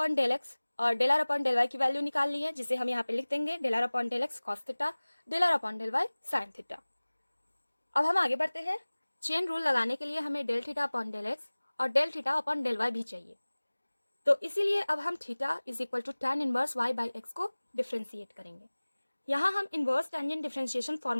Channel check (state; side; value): inverted; both; correlation -1.00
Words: del x और del r upon del y की वैल्यू निकाल ली है, जिसे हम यहाँ पे लिख देंगे del r upon del x cos theta, del r upon del y sine theta. अब हम आगे बढ़ते हैं। चेन रूल लगाने के लिए हमें del theta upon del x और del theta upon del y भी चाहिए। तो इसीलिए अब हम theta is equal to tan inverse y by x को डिफ्रेंशिएट करेंगे। यहाँ हम inverse tangent differentiation